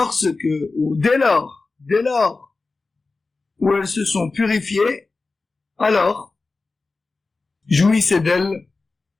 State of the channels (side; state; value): right; quieter; 3.8 dB